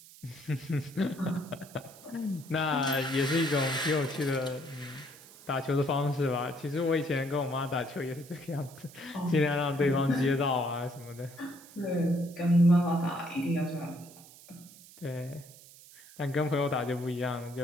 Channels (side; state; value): right; noise; hiss, 20 dB below the sound